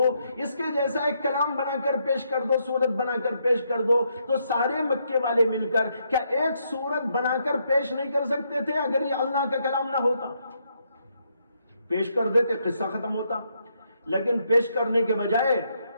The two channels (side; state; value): both; inverted; correlation -0.76